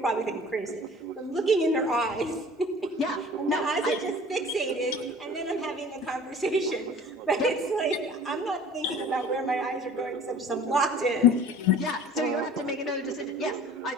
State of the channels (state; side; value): normal; both; correlation 0.46